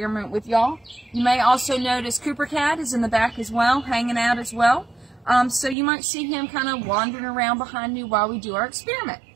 with y'all. You may also notice Cooper Cat is in the back as well, hanging out as well. So you might see him kind of wandering around behind me while we do our experiment.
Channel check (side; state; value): left; drops out; at 5.8 s